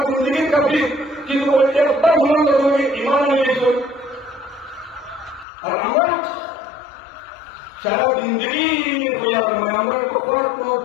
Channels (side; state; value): right; drops out; at 5.5 s